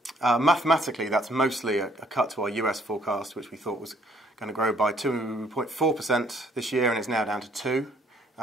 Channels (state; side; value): normal; both; correlation 0.63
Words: Mathematically, that's mostly a cut to our US forecast, which we thought was going to grow by 2.4% this year, and it's now down to 2%.